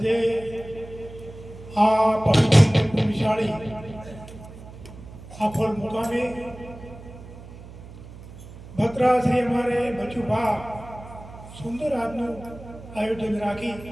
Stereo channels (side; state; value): right; noise; hum, 16 dB below the sound